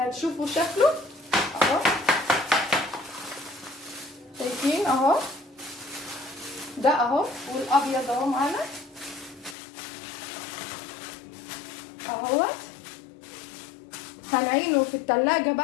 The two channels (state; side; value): drops out; right; at 9.6 s